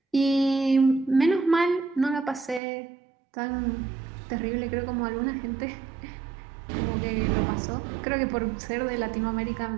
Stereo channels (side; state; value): left; drops out; at 2.6 s